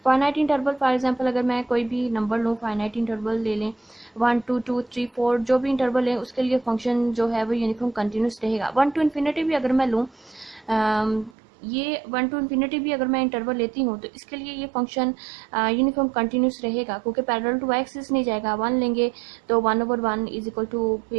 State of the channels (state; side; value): drops out; left; at 11.4 s